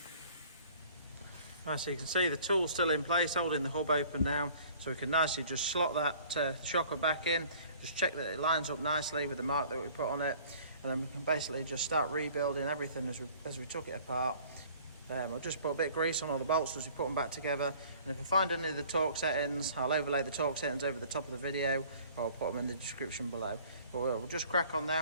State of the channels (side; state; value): both; inverted; correlation -0.52